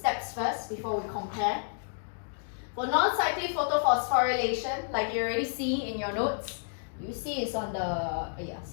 first before we compare. For non-cyclic photophosphorylation, like you already see in your notes, you see it's on the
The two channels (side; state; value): right; silent; digital silence